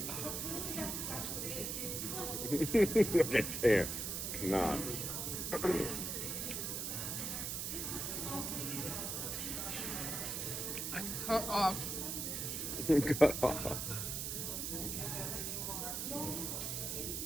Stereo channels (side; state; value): right; noise; hiss, 2 dB below the sound